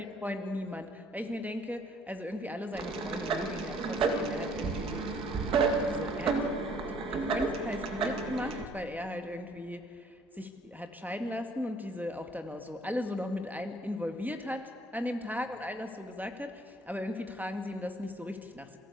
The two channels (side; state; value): both; normal; correlation 0.60